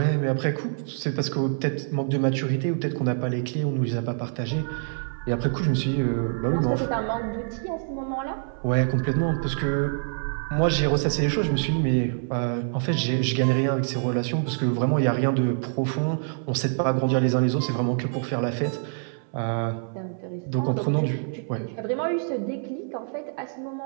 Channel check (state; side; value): silent; left; 58 dB below the other